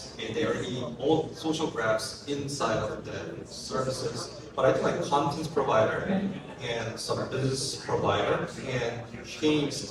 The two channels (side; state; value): both; identical; correlation 1.00